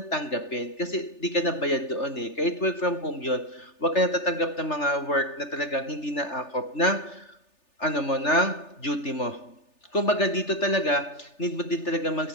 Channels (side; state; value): right; late; 3.4 ms